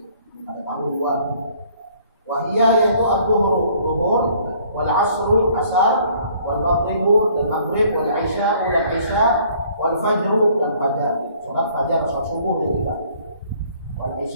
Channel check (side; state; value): both; inverted; correlation -0.59